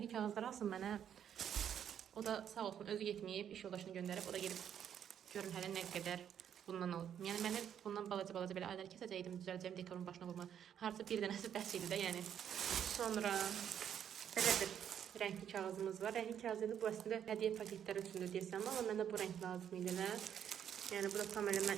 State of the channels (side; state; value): left; quieter; 9.2 dB